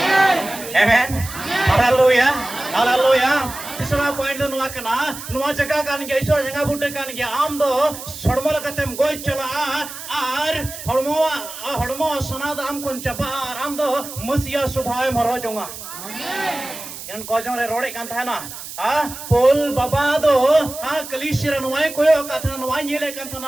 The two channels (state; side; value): noise; right; hiss, 11 dB below the sound